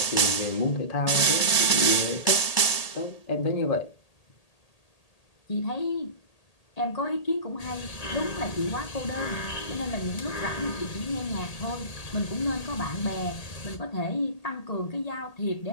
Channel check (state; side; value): late; right; 1.8 ms